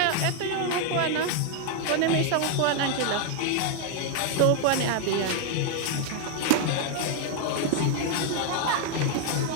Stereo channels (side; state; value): both; different; correlation 0.00